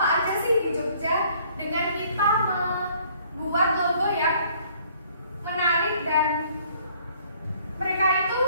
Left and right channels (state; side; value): inverted; both; correlation -0.60